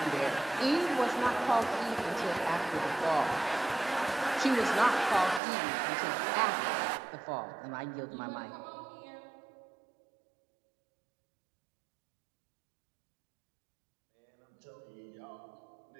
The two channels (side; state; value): left; drops out; at 5.4 s